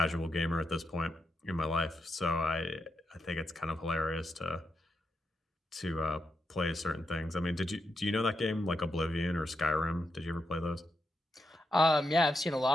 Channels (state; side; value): normal; both; correlation 0.84